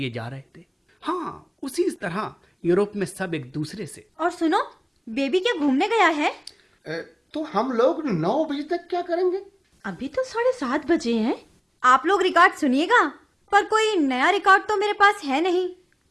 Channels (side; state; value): both; identical; correlation 1.00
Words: जा रहे थे। हाँ, उसी तरह यूरोप में सब एक दूसरे से। और सुनो, बेबी क्या घूमने गया है? तो हम लोग 9 बजे तक क्या करेंगे? अभी तो 7:30 बजे हैं। आप लोग रिकॉर्ड सुनिएगा, पर कोई नया रिकॉर्ड तो मेरे पास है नहीं।